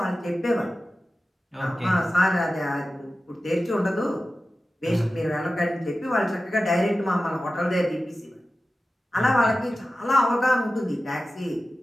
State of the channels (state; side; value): normal; both; correlation 0.95